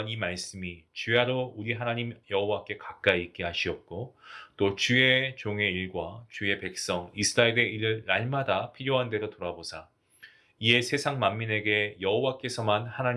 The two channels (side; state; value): both; identical; correlation 1.00